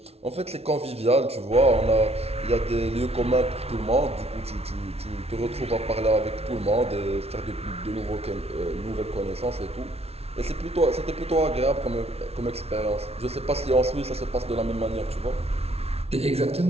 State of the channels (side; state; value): left; late; 0.30 ms